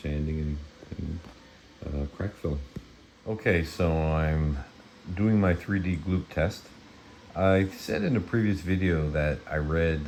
sanding and crack filling. Okay, so I'm doing my 3D gloop test. I said in a previous video that I read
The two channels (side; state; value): both; identical; correlation 1.00